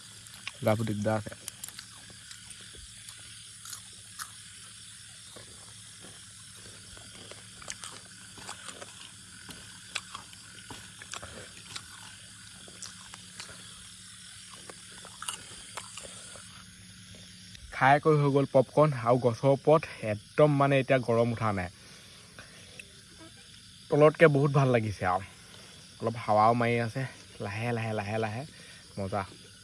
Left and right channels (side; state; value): both; identical; correlation 1.00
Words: গাবোৰ দিগদাৰ আছে খাই কৰি হৈ গ'ল পপকৰ্ণ আৰু গছৰ ওপৰত একদম মানে এতিয়া গৰম উঠা নাই তলতকৈ বহুত ভাল লাগিছে আৰু অলপ হাৱাও মাৰি আছে লাহে লাহে লাহে লাহে মজা